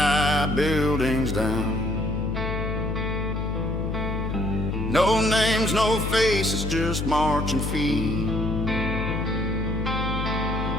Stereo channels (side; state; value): left; noise; hum, 2 dB below the sound